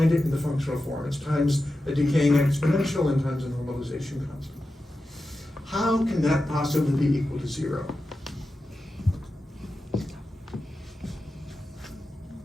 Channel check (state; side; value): normal; both; correlation 0.92